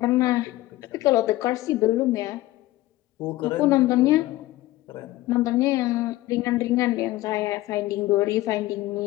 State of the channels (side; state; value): right; quieter; 17.2 dB